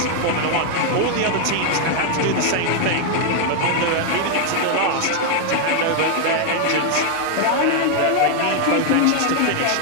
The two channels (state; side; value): different; both; correlation 0.00